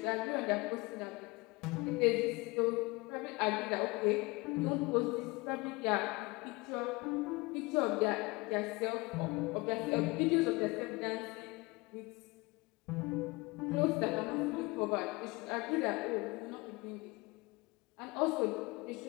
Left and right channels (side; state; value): right; quieter; 24.7 dB